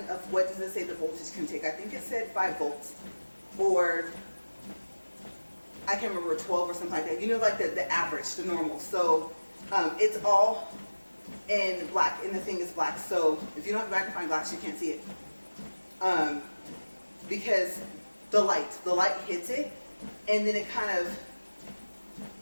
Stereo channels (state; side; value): inverted; both; correlation -1.00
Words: of what does it say the voltage can take? I think it said 5 volts, or I can't remember, 12 or something like that. You know, like the average, the normal. So it's all in black, and the thing is black. So if you don't have a magnifying glass, you can't see it. Because the light hits it, and then it kind of